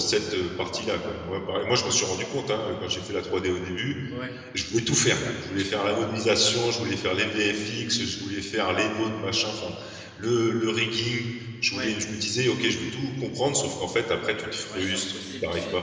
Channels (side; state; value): both; identical; correlation 1.00